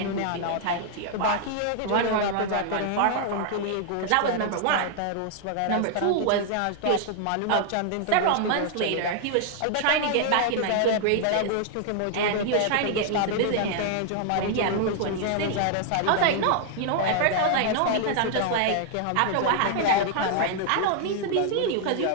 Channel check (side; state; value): both; different; correlation -0.01